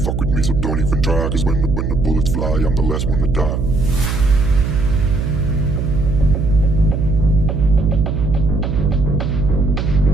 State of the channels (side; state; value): right; noise; hum, 1 dB below the sound